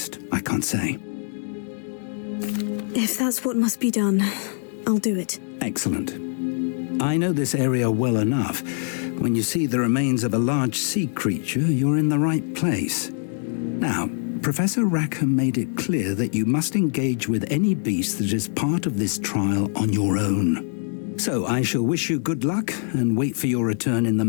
I can't say. If that's what must be done, I'll do it. Excellent. I know this area well enough. When you see the remains of a large sea creature, you're in the right place. Now, Professor Rackham made it clear that you must engage with any beast that is part of this trial on your own. So I shall wish you good luck and wait for your return in the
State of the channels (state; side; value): silent; right; 63 dB below the other